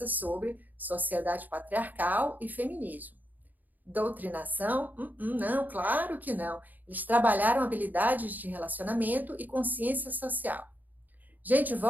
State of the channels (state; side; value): late; left; 0.083 ms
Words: sobre sociedade patriarcal e feminismo. Doutrinação? Não, claro que não. Eles trabalharam habilidades de relacionamento e consciência social. Gente,